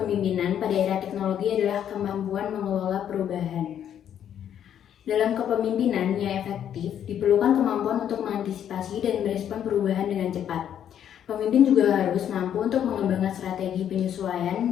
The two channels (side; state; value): right; quieter; 9.7 dB